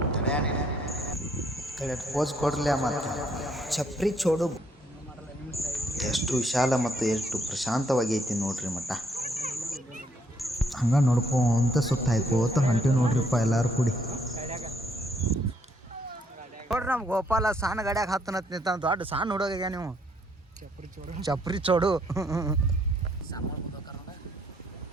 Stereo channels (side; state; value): both; normal; correlation 0.69